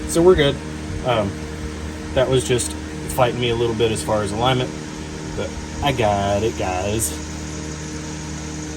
so we're good. That was just fighting me a little bit as far as alignment, but I got it, guys.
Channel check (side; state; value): both; identical; correlation 1.00